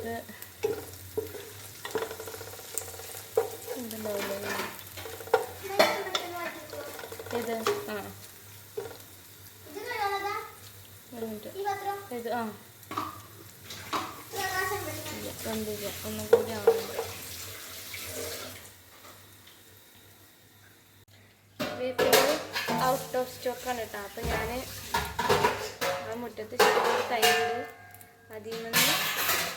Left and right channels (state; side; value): identical; both; correlation 1.00